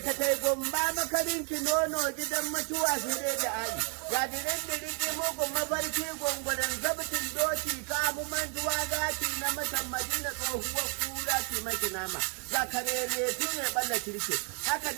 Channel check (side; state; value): left; quieter; 38.9 dB